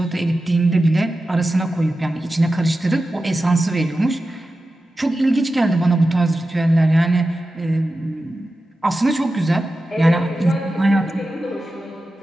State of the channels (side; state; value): both; normal; correlation 0.93